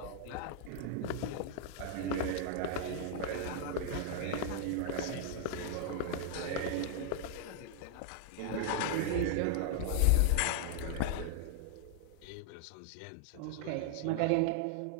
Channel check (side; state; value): both; different; correlation 0.00